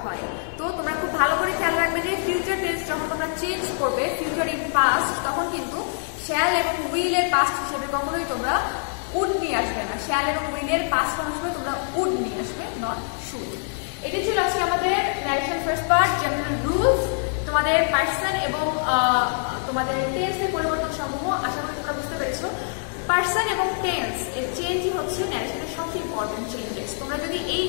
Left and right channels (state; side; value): silent; right; digital silence